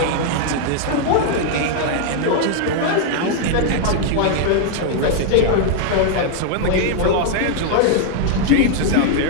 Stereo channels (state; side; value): different; both; correlation 0.00